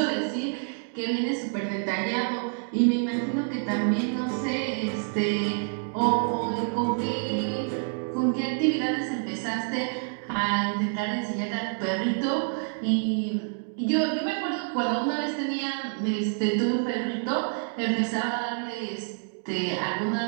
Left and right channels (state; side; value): silent; left; 60 dB below the other